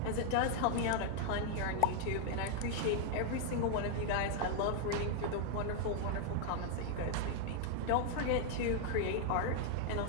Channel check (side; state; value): both; different; correlation 0.00